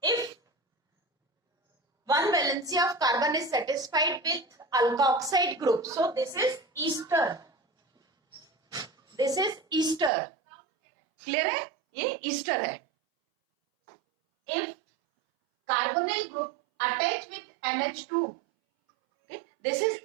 If one valency of carbon is satisfied with alkoxide group, so this is ester. This is ester. Clear है? ये ester है. If carbonyl group attached with NH2, okay, this is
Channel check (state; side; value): drops out; left; at 10.1 s